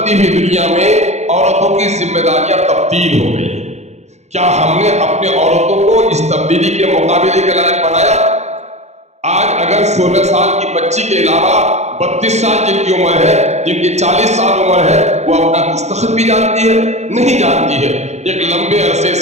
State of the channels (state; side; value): late; left; 0.33 ms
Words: हुई दुनिया में औरतों की जिम्मेदारियां तब्दील हो गई। क्या हमने अपने औरतों को इस तब्दीली के मुकाबले के लायक बनाया? आज अगर 16 साल की बच्ची के अलावा 32 साल जिनकी उम्र है, जिनकी 40 साल उम्र है, वो अपना दस्तखत भी जानती है? नहीं जानती है। एक लंबे अरसे